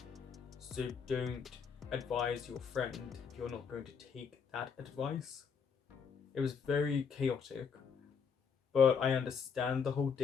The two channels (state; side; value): quieter; right; 6.4 dB